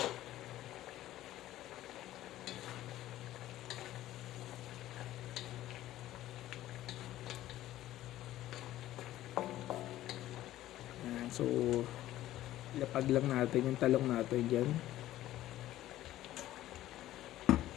So, ilapag lang natin yung talong natin dyan.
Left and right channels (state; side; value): quieter; right; 14.3 dB